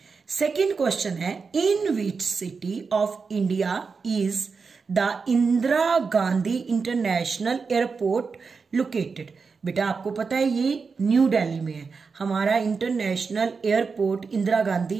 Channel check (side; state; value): left; quieter; 5.0 dB